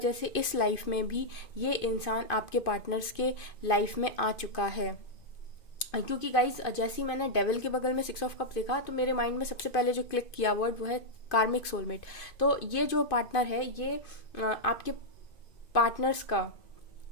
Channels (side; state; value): right; late; 2.5 ms